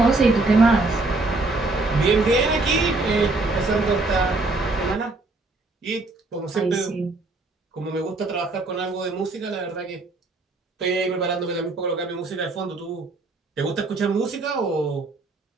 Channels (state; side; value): quieter; left; 3.2 dB